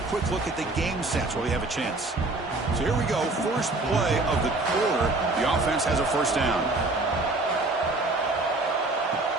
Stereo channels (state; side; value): quieter; left; 3.0 dB